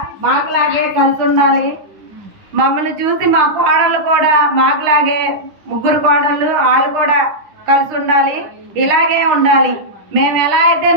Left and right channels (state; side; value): late; left; 9.9 ms